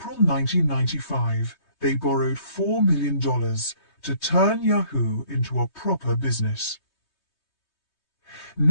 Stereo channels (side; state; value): right; late; 3.2 ms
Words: 1995, they borrowed $4 million to turn Yahoo into a proper business.